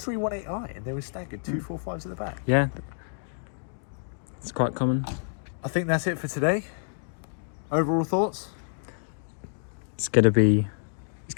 and they were staggered, 245s at the back. Yeah, it's quite common. I think that's it for today. Overall thoughts? It's gonna be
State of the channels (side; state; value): right; silent; digital silence